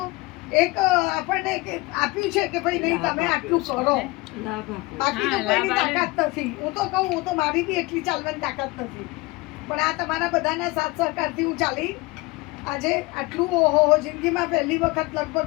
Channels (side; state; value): right; quieter; 22.8 dB